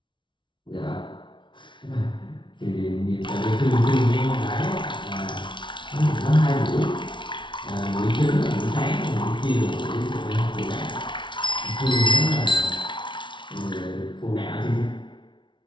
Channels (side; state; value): right; late; 0.24 ms